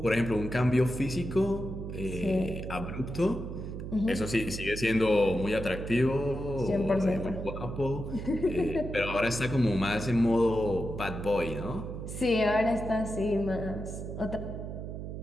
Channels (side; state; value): right; noise; hum, 7 dB below the sound